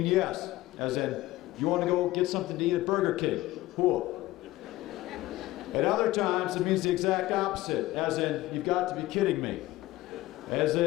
yes, as in, you want to go get something to eat at Burger King, whoop. At other times, it means the exact opposite, as in, you've got to be kidding me. As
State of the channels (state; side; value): quieter; right; 17.2 dB